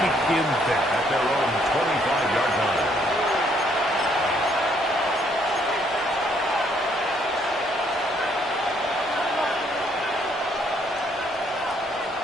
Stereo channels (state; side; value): normal; both; correlation 0.68